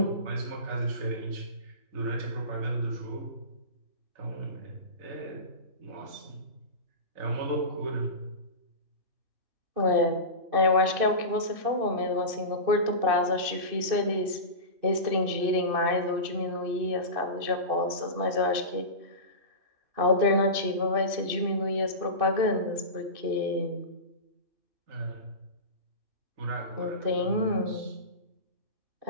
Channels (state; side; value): late; left; 2.6 ms